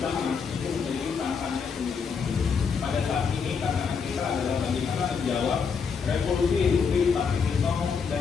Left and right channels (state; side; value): quieter; right; 5.9 dB